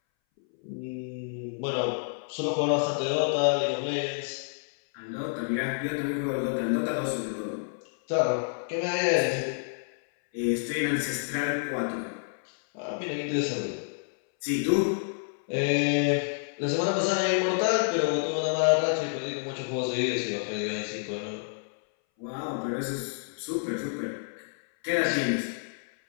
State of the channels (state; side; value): silent; right; 59 dB below the other